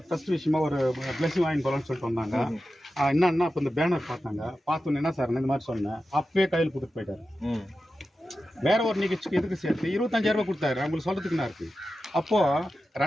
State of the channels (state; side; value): normal; both; correlation 0.92